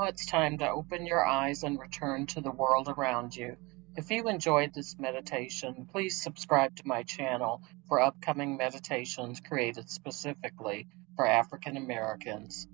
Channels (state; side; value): quieter; left; 25.0 dB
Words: it's time to open your eyes and return to the world around you. If you enjoyed this meditation, please subscribe to my channel for upcoming meditations created specifically for African Americans.